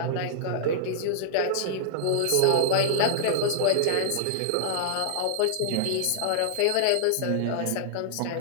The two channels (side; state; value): both; different; correlation -0.01